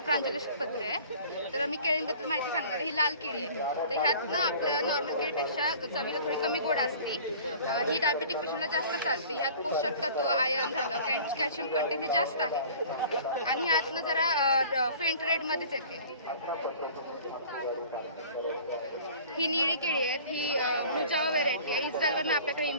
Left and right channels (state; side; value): inverted; both; correlation -0.46